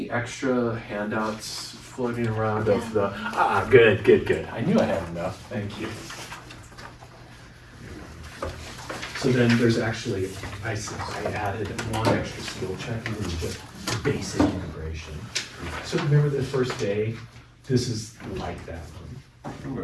extra handouts floating around of the, good. I knew I had enough, thank you. So then there's actually, I added one extra skill check, and it was just basic integration. So remember the first day, this is like that one,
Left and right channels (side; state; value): both; identical; correlation 1.00